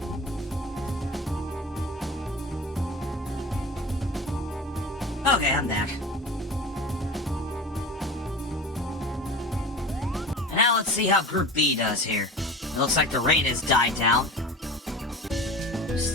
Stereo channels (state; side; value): normal; both; correlation 0.35